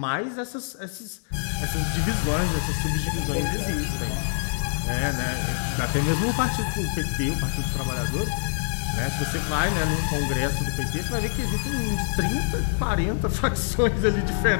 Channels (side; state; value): right; silent; 62 dB below the other